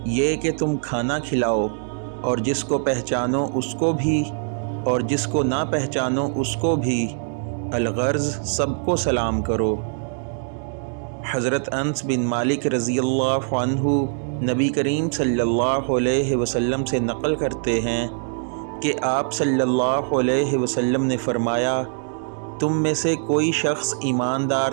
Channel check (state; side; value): silent; left; digital silence